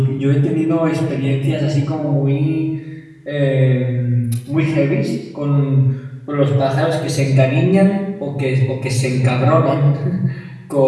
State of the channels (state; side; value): identical; both; correlation 1.00